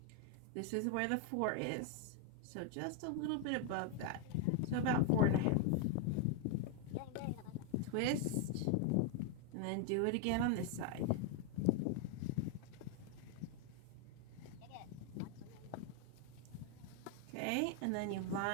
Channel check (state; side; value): different; both; correlation 0.01